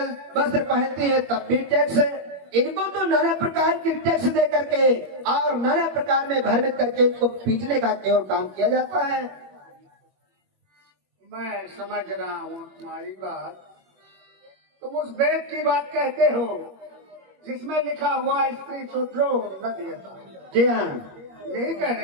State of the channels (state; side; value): late; left; 21 ms